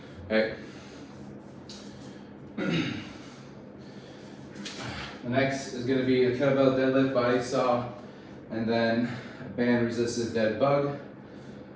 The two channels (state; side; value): identical; both; correlation 1.00